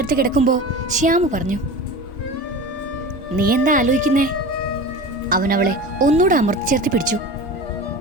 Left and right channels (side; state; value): both; normal; correlation 0.33